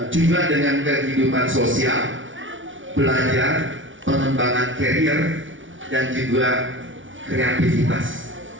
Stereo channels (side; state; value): left; late; 0.56 ms